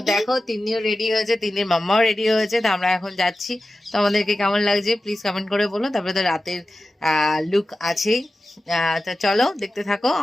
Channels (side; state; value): both; normal; correlation 0.94